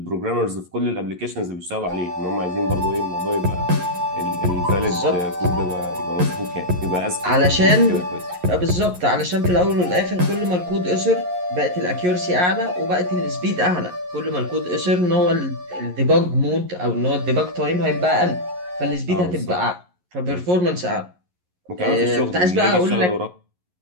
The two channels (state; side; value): late; left; 11 ms